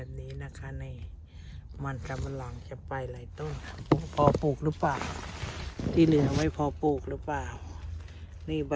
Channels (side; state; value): both; identical; correlation 1.00